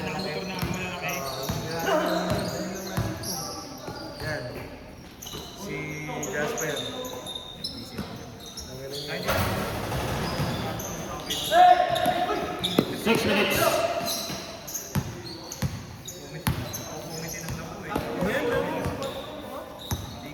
nakamotor na malalaki? Yan. Si Jasper. 6 minutes.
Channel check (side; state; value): both; identical; correlation 1.00